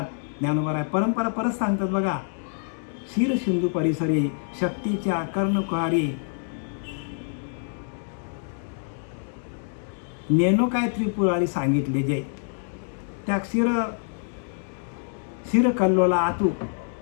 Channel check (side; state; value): right; silent; 61 dB below the other